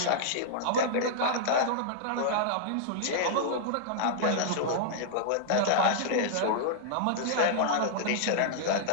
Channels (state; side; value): different; both; correlation -0.02